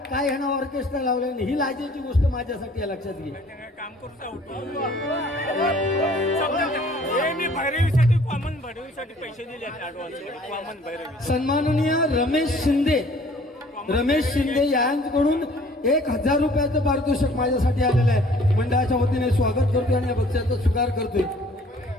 काय ह्यानं ऑर्केस्ट्रा लावलं नाही. ही लाजेची गोष्ट माझ्यासाठी आहे, लक्षात घे. सन्माननीय रमेश शिंदे यांच्याकडून 1,000 रुपयाचं पारितोषिक माझ्यासाठी आलेलं आहे. मंडळाच्या वतीने स्वागत करतोय आणि या बक्षिसाचा स्वीकार करतोय.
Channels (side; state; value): both; normal; correlation 0.54